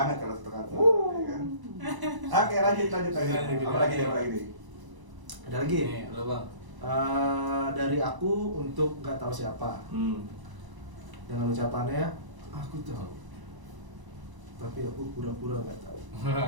kalau satu kantor, ya kan. Oke, lanjut. Apa lagi nih? Ada lagi? Nih, lo Bang. Dari aku untuk nggak tahu siapa. Dengan ucapannya, aku tahu. Tapi aku pura-pura nggak tahu.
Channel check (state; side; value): late; left; 1.0 ms